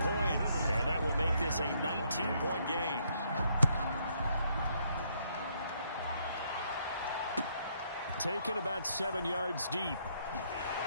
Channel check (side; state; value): both; inverted; correlation -0.71